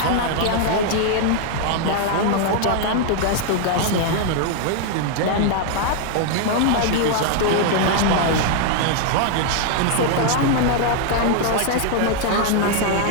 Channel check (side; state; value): both; different; correlation 0.00